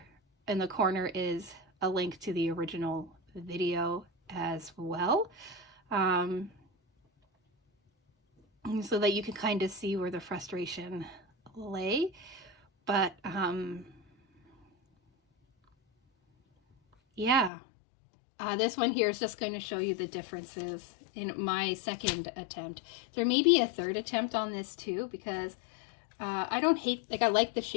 in the corner is a link to the original video as well. So that you can kind of see where the frustration lay. But yeah, this one here is just going to show you the differences in my second attempt. There may be a third attempt on this too, because I don't hate, like, I like the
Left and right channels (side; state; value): right; drops out; at 17.5 s